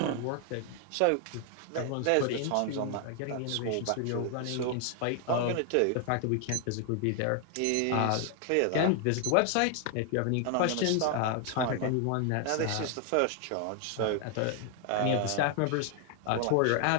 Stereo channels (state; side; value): different; both; correlation 0.00